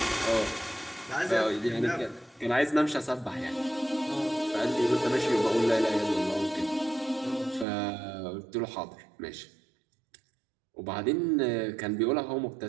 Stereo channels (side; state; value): left; drops out; at 7.7 s